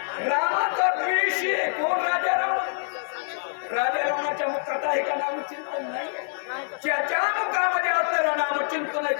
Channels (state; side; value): silent; right; digital silence